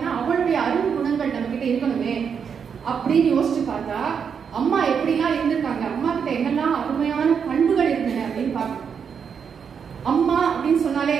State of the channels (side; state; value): left; quieter; 6.8 dB